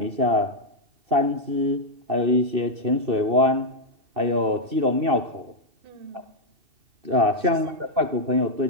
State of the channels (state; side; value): late; left; 2.7 ms